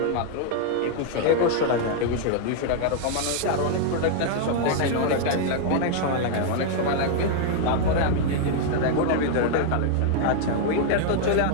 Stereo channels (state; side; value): different; both; correlation 0.00